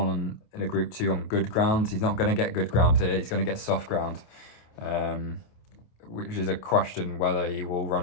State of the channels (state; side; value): late; right; 28 ms